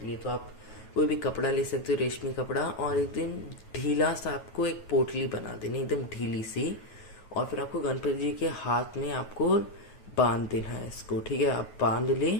लिए। तो आप कोई भी कपड़ा ले सकते हो, रेशमी कपड़ा, और एकदम ढीला सा आपको एक पोटली बना देनी, एकदम ढीली सी। और फिर आपको गणपति जी के हाथ में आपको बांध देना है इसको। ठीक है, आप बांध ले।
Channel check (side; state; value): right; late; 9.3 ms